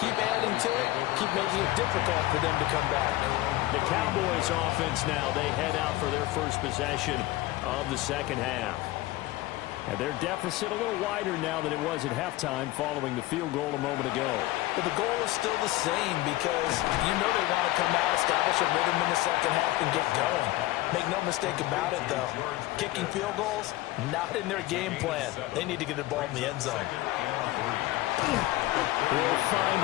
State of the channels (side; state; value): right; quieter; 17.8 dB